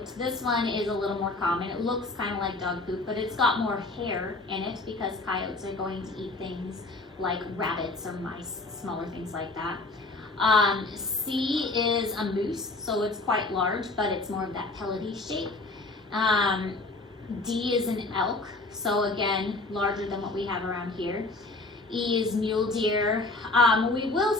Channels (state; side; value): quieter; right; 3.1 dB